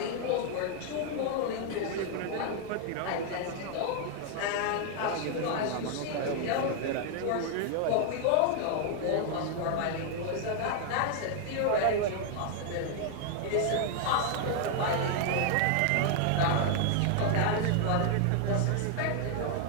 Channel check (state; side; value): different; both; correlation 0.00